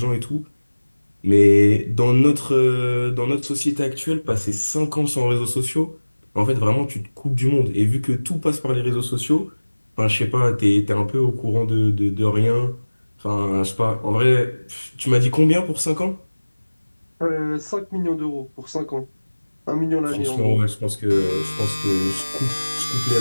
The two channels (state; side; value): inverted; both; correlation -1.00